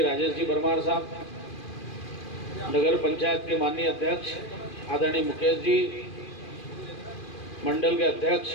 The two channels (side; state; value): right; late; 2.4 ms